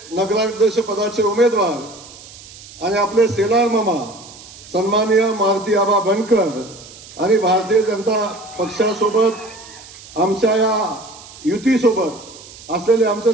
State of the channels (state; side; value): noise; right; hiss, 19 dB below the sound